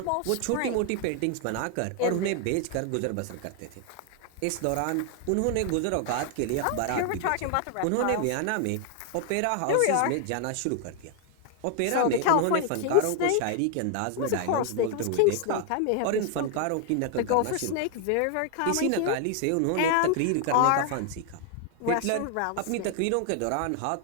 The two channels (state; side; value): different; both; correlation 0.00